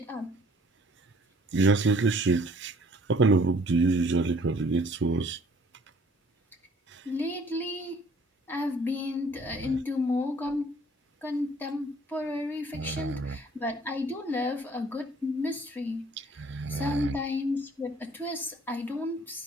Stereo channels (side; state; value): both; normal; correlation 0.57